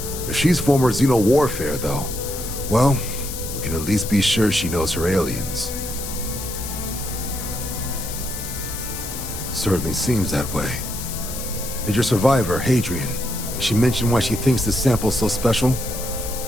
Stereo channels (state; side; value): noise; left; hiss, 8 dB below the sound